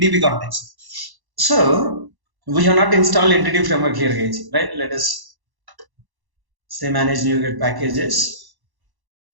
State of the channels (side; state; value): left; late; 1.1 ms